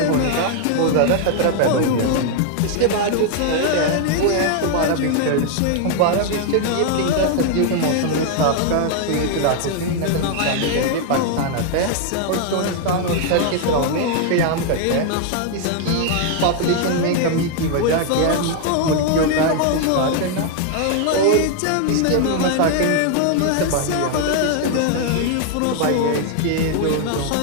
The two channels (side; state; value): both; different; correlation 0.00